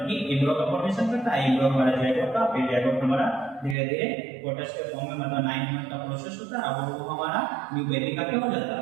कि एम्ब्रियो का फॉर्मेशन करता है। एम्ब्रियो हमारा जैड होता है, फिर जैड हमारा धीरे धीरे फोटस के फॉर्म में मतलब 9 मंथ का प्रोसेस होता है, अब वो हमारा न्यू बेबी का क्या हो जाता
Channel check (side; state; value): left; drops out; at 3.8 s